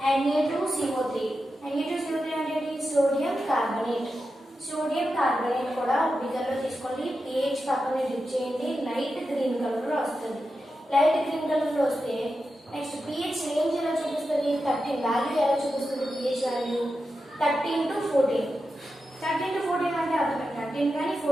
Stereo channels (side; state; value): both; normal; correlation 0.90